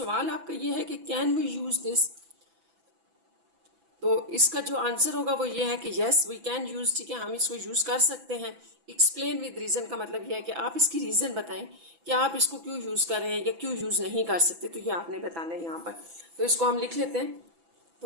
आपका ये है कि कैन वी यूज़ दिस। तो इसका जो आंसर होगा वो ये है कि यस वी कैन यूज़। ठीक है, हम इसको यूज़ कर सकते हैं। एक्सप्लेन विद रीज़न का मतलब यह है कि आप इसकी रीज़न बताएं कि आप इसको क्यों यूज़ कर रहे हैं या क्यों यूज़ नहीं कर सकते, तो ये आपने बताना है यहाँ पर। तो इसको हम लिख लेते हैं,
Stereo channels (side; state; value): left; late; 6.0 ms